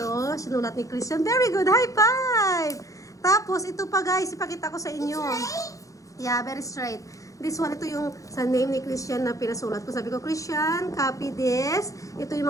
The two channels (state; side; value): late; right; 0.16 ms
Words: sinulat ni Christian. Very good, high five! Tapos, ito pa guys, ipakita ko sa inyo. Yeah, very straight. This one, ito yung sa name ni Christian na pinasulat ko. Sabi ko, Christian, copy this. Ito